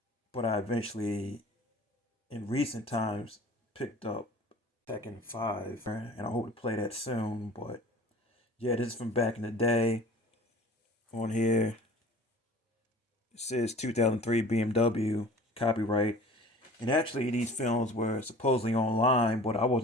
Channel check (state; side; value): normal; both; correlation 0.45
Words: But I eventually, in recent times, picked up Tekken 5, and I hope to play that soon. But yeah, this is from back in the day. On here, it says 2003 BMW, copyright. And actually, these films were supposedly online, but I